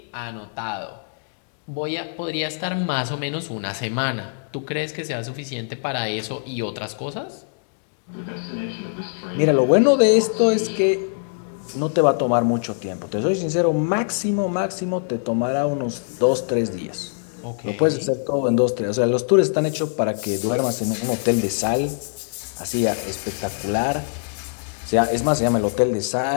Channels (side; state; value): right; silent; digital silence